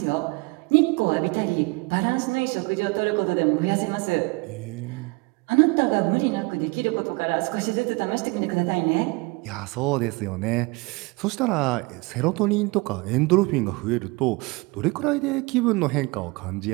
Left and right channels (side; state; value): left; quieter; 25.5 dB